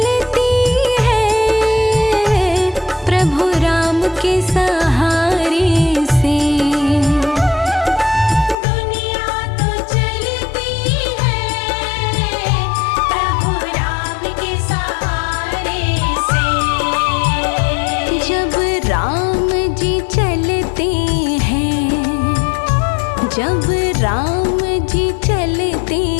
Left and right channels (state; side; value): drops out; right; at 8.6 s